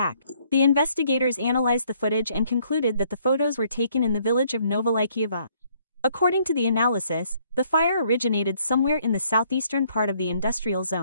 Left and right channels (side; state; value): both; inverted; correlation -0.66